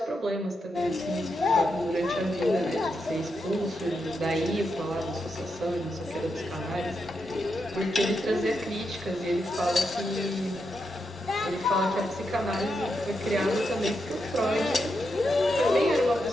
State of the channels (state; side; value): normal; both; correlation 0.84